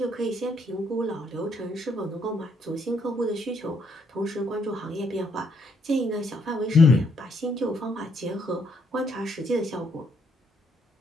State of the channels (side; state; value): both; normal; correlation 0.72